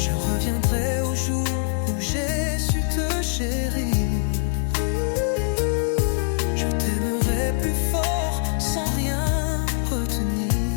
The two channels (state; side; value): silent; right; digital silence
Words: reviendrai au jour où j'ai su te chérir. Je t'aimerai plus fort sans rien